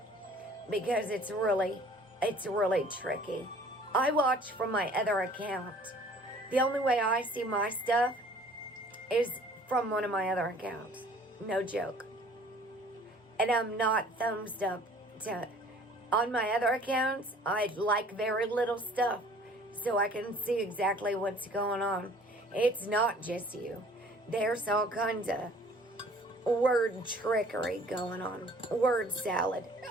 Because it's really tricky. I watch from my other account. The only way I see my stuff is from one of my other accounts. No joke. And I'm not thumbs up on my other accounts. I like very little stuff so I can see exactly what's going on. It's not just you. There's all kinds of word trickery going on. Word salad.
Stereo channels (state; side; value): normal; both; correlation 0.52